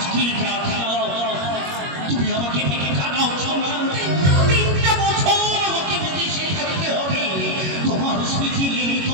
রাত তুমি আমাকে ভেঙে কাঁদাও সোনা 3টা বছর আমাকে বিদেশে থাকতে হবে তোমার স্মৃতি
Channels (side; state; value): left; late; 21 ms